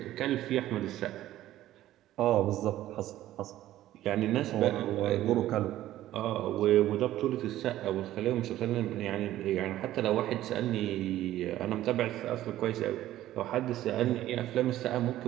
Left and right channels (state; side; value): quieter; left; 14.0 dB